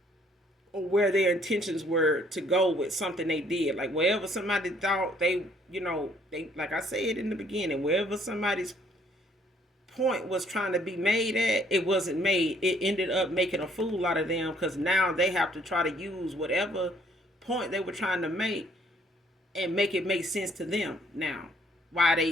or where their intentions were to go with something they did. Like wherever somebody thought they like I said in the beginning, wherever somebody's point was trying to be made at, it wasn't made. It ended up making a fool out of them, because now they have to try to use whatever point they were trying to make and make it make sense to them now.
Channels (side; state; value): both; normal; correlation 0.63